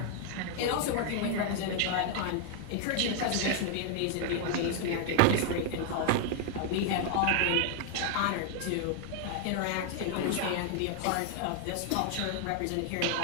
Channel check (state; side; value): different; both; correlation 0.00